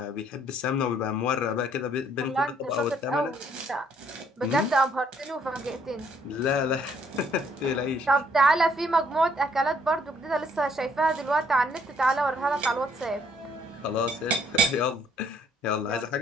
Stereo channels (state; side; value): normal; both; correlation 0.66